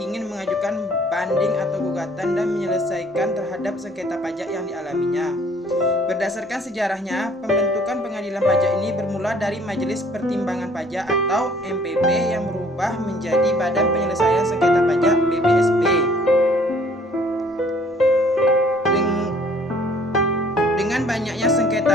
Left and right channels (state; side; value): normal; both; correlation 0.58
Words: mengajukan banding atau gugatan dan menyelesaikan terhadap sengketa pajak yang dialaminya. Berdasarkan sejarahnya, pembentukan pengadilan pajak ini bermula dari Majelis Pertimbangan Pajak atau MPP yang berubah menjadi Badan Penyelesaian Sengketa Pajak BPSP. Dengan banyaknya